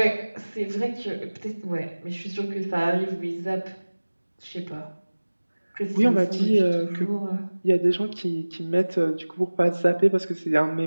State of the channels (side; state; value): both; inverted; correlation -1.00